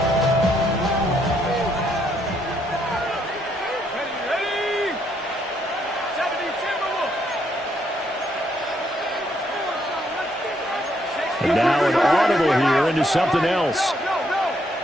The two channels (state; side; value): normal; both; correlation 0.73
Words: And now an audible here into something else.